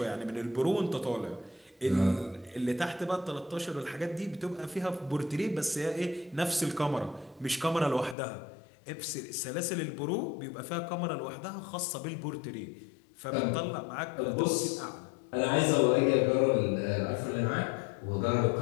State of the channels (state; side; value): drops out; right; at 8.2 s